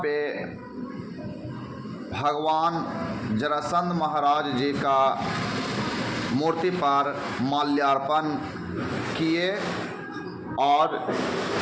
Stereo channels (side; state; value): both; identical; correlation 1.00